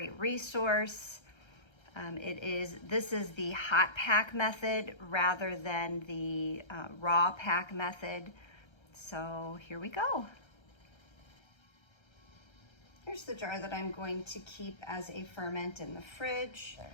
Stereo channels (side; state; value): right; late; 1.3 ms